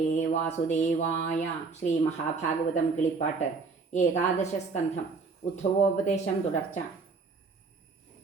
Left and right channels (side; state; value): left; quieter; 4.5 dB